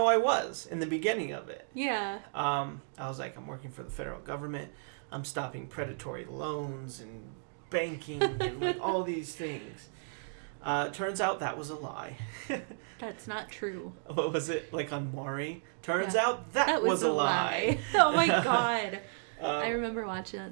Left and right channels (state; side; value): silent; left; digital silence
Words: I was in the beginning of it. Yeah. I was like, I'm working for the federal government. I'm stopping predatory loans and banking and like all these things. Turns out that was a lie. That's not true. What was it? Like on Maury? Turns out that was a lie. Oh my God. I remember watching